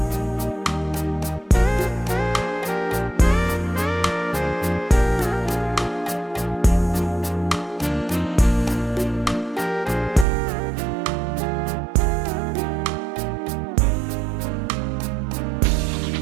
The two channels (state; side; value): drops out; left; at 10.2 s